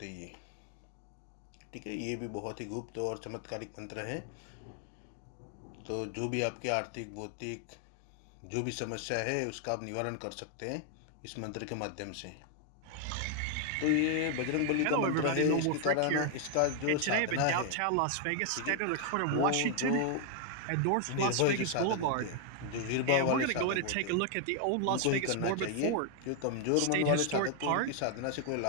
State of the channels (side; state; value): both; different; correlation 0.00